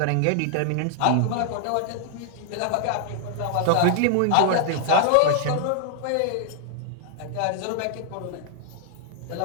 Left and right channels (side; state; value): both; different; correlation -0.01